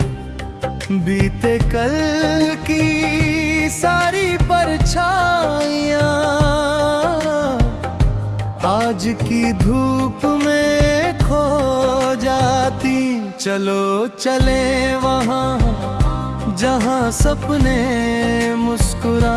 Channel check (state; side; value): identical; both; correlation 1.00